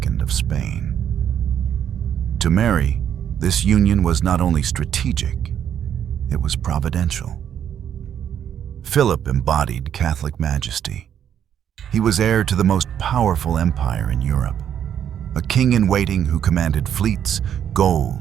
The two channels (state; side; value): quieter; left; 9.3 dB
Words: of Spain. To Mary, this union was not only strategic, it was providential. Philip embodied Catholic majesty. He was heir to the most powerful empire in Europe, a king-in-waiting who commanded fleets,